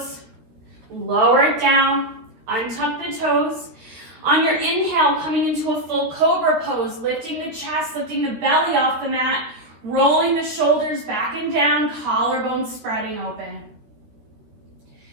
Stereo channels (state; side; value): late; left; 13 ms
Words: lower it down, untuck the toes. On your inhale, coming into a full cobra pose, lifting the chest, lifting the belly off the mat, rolling the shoulders back and down, collarbones spreading open.